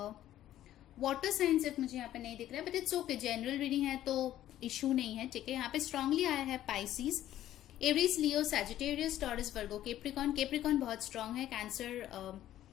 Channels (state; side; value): quieter; right; 12.8 dB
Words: वाटर साइंस सिर्फ मुझे यहाँ पे नहीं दिख रहा है, but it's okay, general reading है तो इशू नहीं है। ठीक है, यहाँ पे स्ट्रांगली आया है Pisces, Aries, Leo, Sagittarius, Taurus, Virgo, Capricorn. Capricorn बहुत स्ट्रांग है। Cancer,